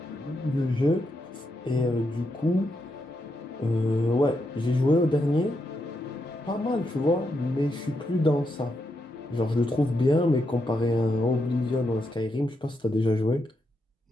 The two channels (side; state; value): both; normal; correlation 0.82